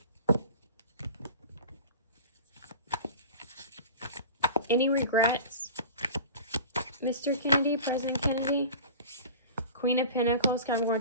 Any regrets? Mr. Kennedy, President Kennedy. Queen of Pentacles, Capricorn,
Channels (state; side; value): inverted; both; correlation -0.37